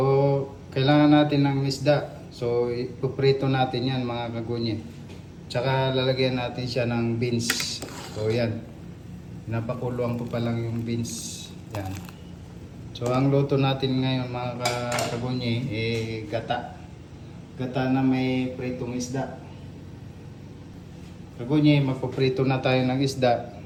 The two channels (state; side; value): identical; both; correlation 1.00